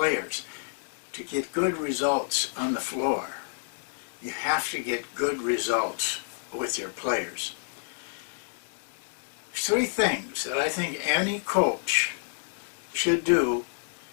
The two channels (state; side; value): silent; right; digital silence